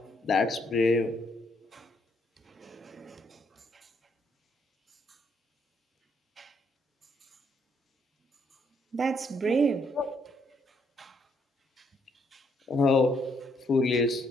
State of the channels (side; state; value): both; normal; correlation 0.71